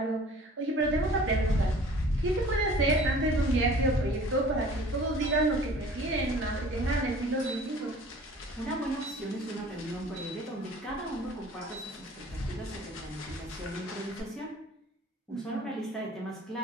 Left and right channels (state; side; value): normal; both; correlation 0.48